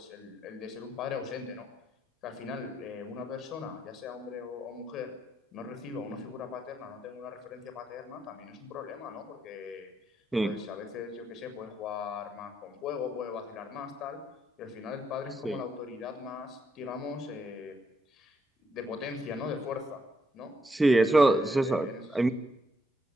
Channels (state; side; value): normal; both; correlation 0.77